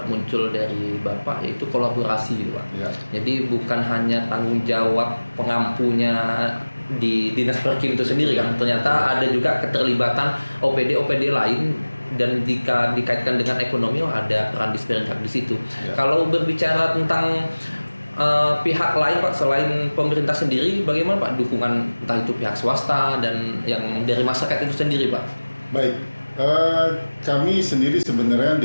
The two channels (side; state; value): both; inverted; correlation -1.00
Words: muncul dari Bapak, yaitu kolaborasi gitu Pak. Ya. Jadi bukan hanya tanggung jawab pengampunya di Dinas Perkim itu sendiri kan, ternyata ada juga keterlibatan OPD lain, dan jika dikaitkan dengan ekonomi ada peran Disperindak di situ. Ya. Kalau berbicara tentang pihak lain Pak selain pemerintah sendiri, bagaimana Pak dukungan entah itu pihak swasta dan yang dari masyarakat itu sendiri Pak? Baik, kami sendiri sebenarnya